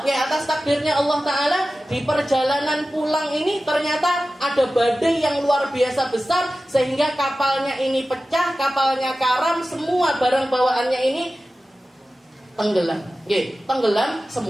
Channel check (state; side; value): normal; both; correlation 0.95